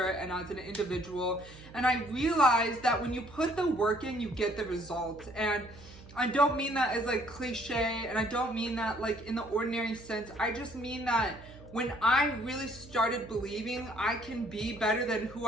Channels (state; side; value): noise; right; hum, 19 dB below the sound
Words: and as an individual. And I realized that when you put the work in, you get the results. And I don't mean that as like cliche, and I don't mean that like in the ordinary sense. I just mean that when I really started believing I can be better than who